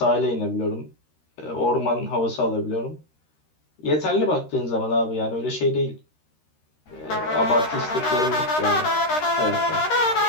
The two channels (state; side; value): late; right; 13 ms